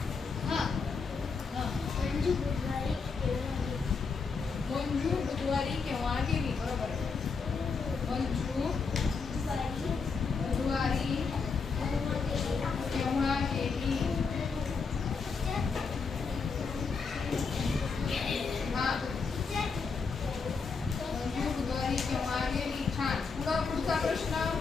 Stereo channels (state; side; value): quieter; right; 5.0 dB